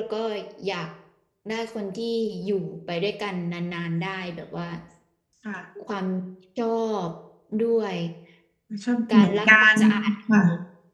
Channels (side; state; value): both; identical; correlation 1.00